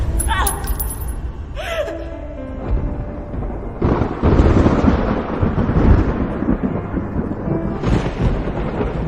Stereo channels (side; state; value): both; identical; correlation 1.00